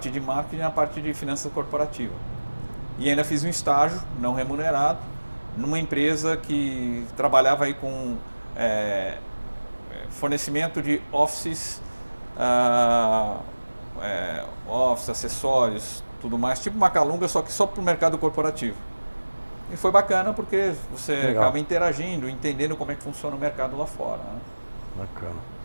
de marketing e na parte de finanças corporativa. E ainda fiz um estágio não remunerado, numa empresa que trabalhava aí com fornecimento de offices, acessórios, tudo mais, tipo Macalunga, só que só para o mercado corporativo. E foi bacana porque você acaba interagindo, entendendo como é que funciona o mercado lá fora. Né? Bacana.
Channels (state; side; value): inverted; both; correlation -1.00